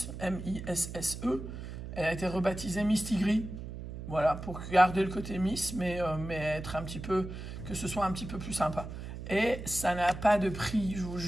M-I-S-S-E. Elle a été rebaptisée Miss Tigri. Voilà, pour garder le côté Miss, mais être un petit peu, que ce soit un petit peu plus sympa. Et ça n'a pas de prix, je vous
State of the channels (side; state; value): right; noise; hum, 9 dB below the sound